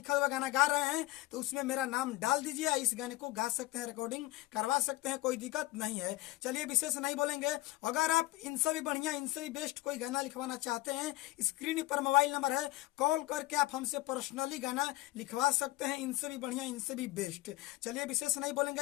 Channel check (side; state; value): right; quieter; 17.9 dB